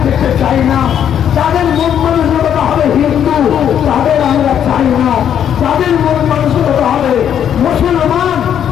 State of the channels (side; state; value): right; quieter; 9.3 dB